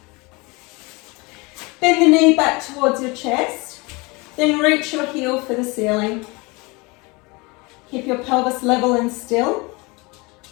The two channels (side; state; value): right; quieter; 26.1 dB